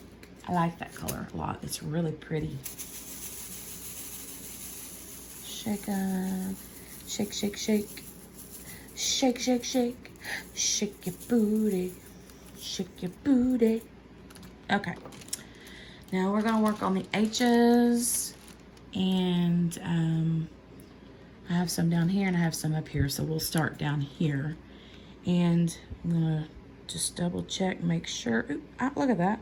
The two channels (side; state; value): both; identical; correlation 1.00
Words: I like that color a lot. It's really pretty. Shake up. Shake, shake, shake. Shake, shake, shake. Shake your booty. Shake your booty. Okay. Now we're going to work on the H's. And I have some down here and I have some up here. So we'll start down here. And I'm going to just double check, make sure. Ooh, look at that.